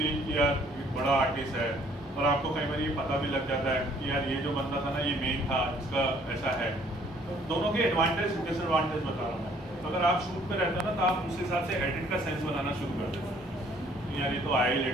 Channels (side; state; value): both; normal; correlation 0.60